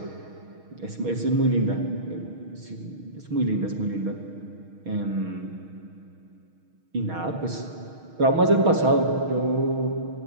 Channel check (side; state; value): left; late; 6.4 ms